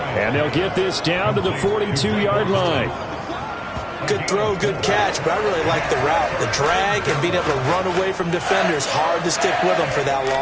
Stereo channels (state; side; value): identical; both; correlation 1.00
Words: And they'll get this down to the 42-yard line. Good throw, good catch, but I really like the route. The drag and being able to run away from defenders. Hard to stick with them for that